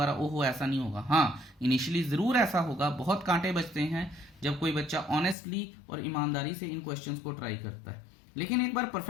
ओहो ऐसा नहीं होगा। हाँ, इनिशियली जरूर ऐसा होगा, बहुत कांटे बचते हैं जब कोई बच्चा ऑनेस्टली और ईमानदारी से इन क्वेश्चंस को ट्राई करता है, लेकिन एक बार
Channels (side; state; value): right; drops out; at 5.4 s